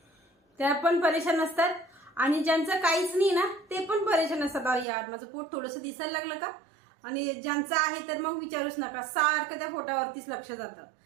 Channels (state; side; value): drops out; left; at 4.9 s